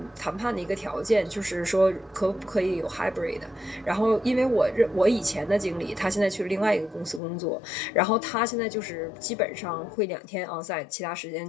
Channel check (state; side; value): drops out; right; at 7.2 s